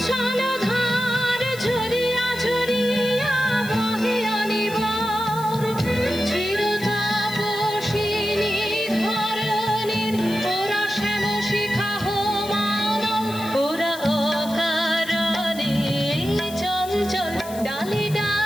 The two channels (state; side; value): noise; left; hiss, 15 dB below the sound